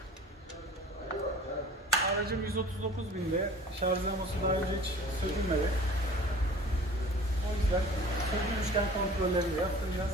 Aracım 139.000'de, şarj dinamosu daha önce hiç sökülmedi. O yüzden sökülmüşken kontrolleri yaptıracağız.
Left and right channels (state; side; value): normal; both; correlation 0.45